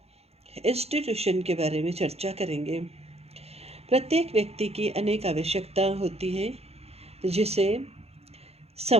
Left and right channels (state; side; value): late; left; 0.30 ms